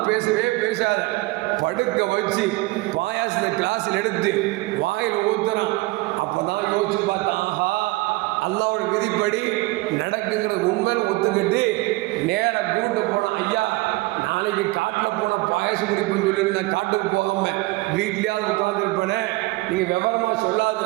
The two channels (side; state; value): left; quieter; 21.4 dB